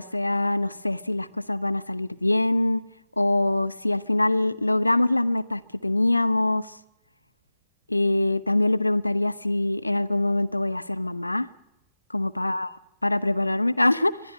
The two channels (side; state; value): both; inverted; correlation -0.99